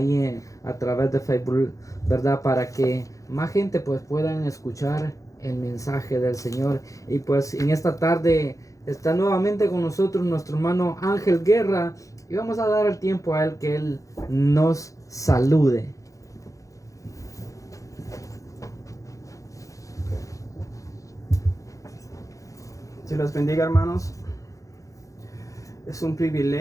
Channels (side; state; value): right; late; 0.16 ms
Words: a través de Facebook, ¿verdad?, para que más gente pues puedan escuchar el mensaje del Señor. Y pues en esta tarde está nuevamente con nosotros nuestro hermano Ángel Guerra y vamos a dar el tiempo a él que él nos salude. Dios los bendiga, hermanos. Es un